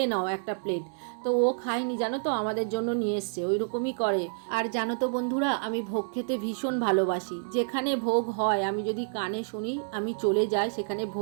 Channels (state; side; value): silent; left; digital silence